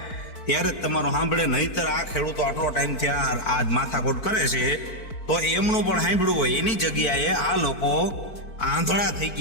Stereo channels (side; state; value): right; late; 4.5 ms